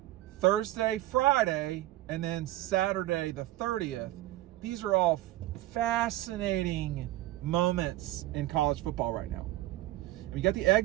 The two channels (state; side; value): quieter; left; 16.1 dB